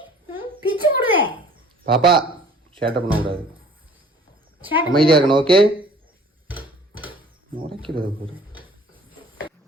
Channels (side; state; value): both; normal; correlation 0.51